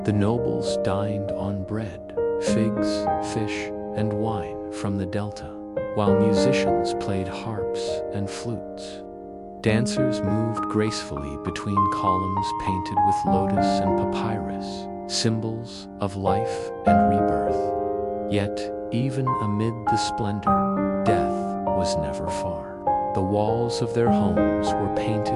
The nobles dined on bread, figs, fish, and wine from the delta, while musicians played harps and flutes. Dancers moved gracefully between columns painted with lotus and papyrus, symbols of life and rebirth. Yet, even amid the splendor, death was never far. The walls of their homes were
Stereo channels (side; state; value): both; identical; correlation 1.00